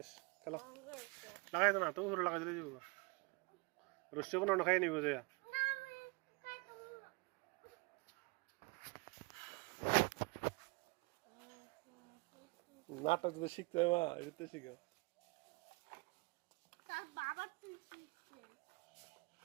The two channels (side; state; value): left; quieter; 27.4 dB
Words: খেলো ভাঙ্গা লাগাই তো না তুমি পুরো লাগাই দিলে যাবো রোশনি কোনো খাই নিব যে না আমি কাটবো নাটক যদি শিখতে হয় মা এটা শিখো তার বাবা তুই শিখছে